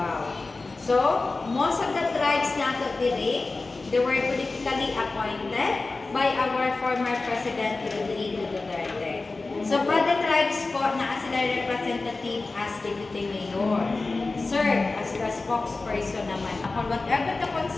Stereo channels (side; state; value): right; quieter; 3.6 dB